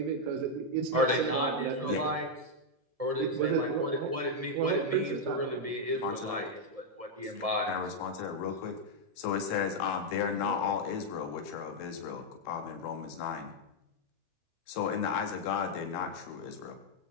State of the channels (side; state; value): left; late; 1.7 ms